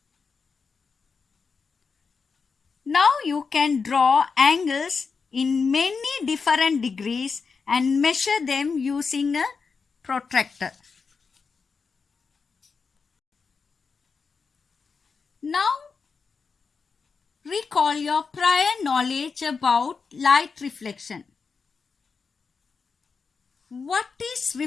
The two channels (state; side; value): quieter; right; 5.1 dB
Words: Now you can draw angles in many different degrees and measure them using a protractor. Now recall your prior knowledge about light reflection. What is